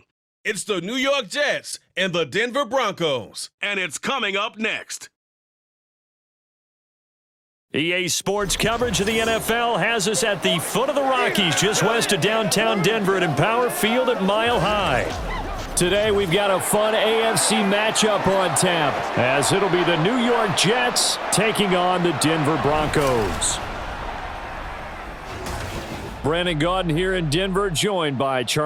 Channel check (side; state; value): both; identical; correlation 1.00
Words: It's the New York Jets and the Denver Broncos. And it's coming up next. EA Sports coverage of the NFL has us at the foot of the Rockies, just west of downtown Denver at Empower Field at Mile High. Today we've got a fun AFC matchup on tap, as it'll be the New York Jets taking on the Denver Broncos. Brandon Gaudin here in Denver, joined by